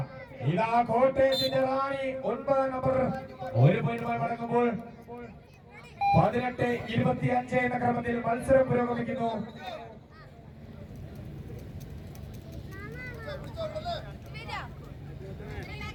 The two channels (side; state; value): both; identical; correlation 1.00